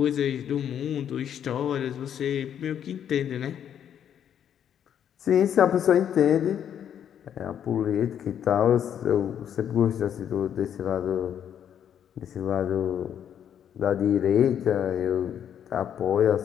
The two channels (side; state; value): right; quieter; 9.3 dB